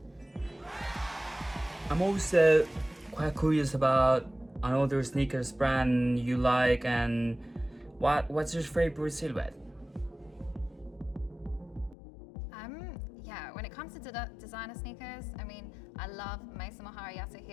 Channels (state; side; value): drops out; right; at 12.0 s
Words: I'm also quite curious about another sneakers brand you like, and what's your favorite silhouette? Yeah, when it comes to designer sneakers, I mean, I love Mason Mahara